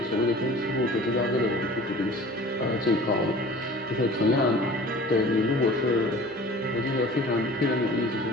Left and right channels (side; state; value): both; normal; correlation 0.44